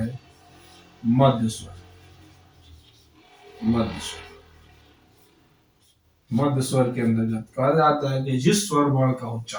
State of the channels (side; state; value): both; identical; correlation 1.00